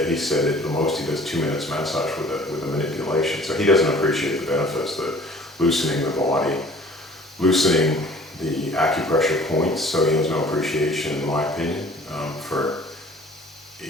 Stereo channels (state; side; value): normal; both; correlation 0.50